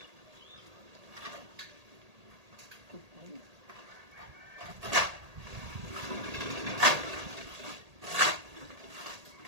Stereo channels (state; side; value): late; left; 1.8 ms